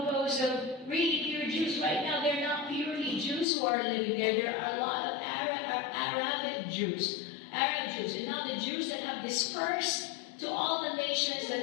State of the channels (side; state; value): right; drops out; at 3.5 s